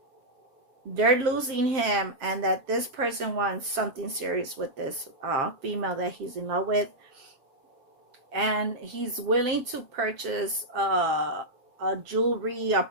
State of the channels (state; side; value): late; left; 7.5 ms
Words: they're losing him and that this person wants something serious with this female that he's in love with, and he's willing to purchase a jewelry, a